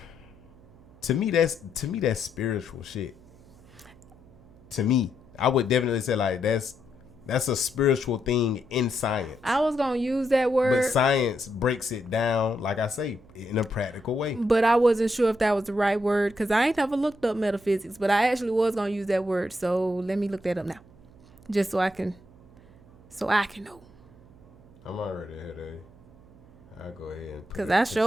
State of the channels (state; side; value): noise; right; hum, 25 dB below the sound